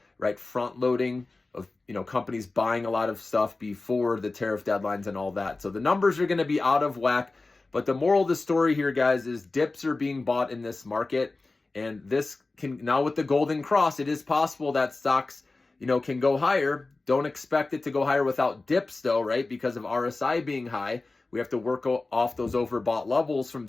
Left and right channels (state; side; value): quieter; right; 3.4 dB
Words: right, front loading of, companies buying a lot of stuff before the tariff deadlines and all that. So the numbers are going to be out of whack. But the moral of the story here, guys, is dips are being bought in this market. And this can, now with the golden cross, it is possible that stocks, can go higher. Don't expect it to go higher without dips though, right? Because of RSI being high, we have to work off those overbought levels from